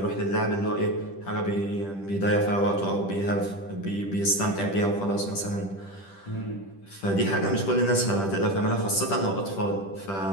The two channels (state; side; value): late; right; 10 ms